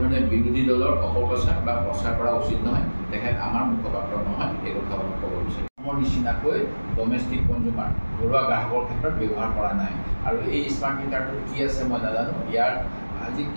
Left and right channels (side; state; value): both; inverted; correlation -1.00